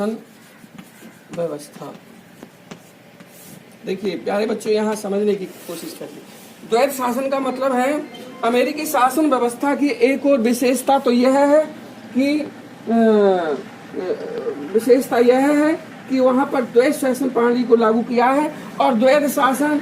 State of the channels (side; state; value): both; identical; correlation 1.00